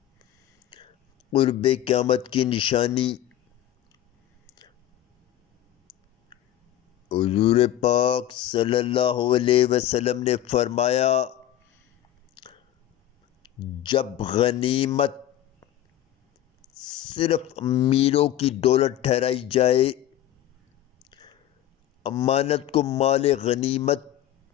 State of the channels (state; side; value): quieter; right; 12.3 dB